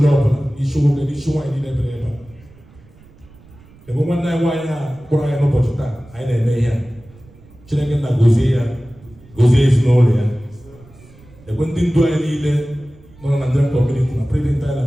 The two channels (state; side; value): noise; right; rumble, 25 dB below the sound